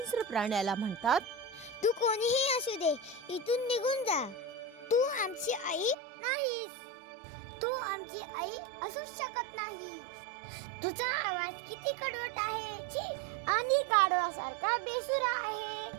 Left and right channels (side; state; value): left; drops out; at 6.0 s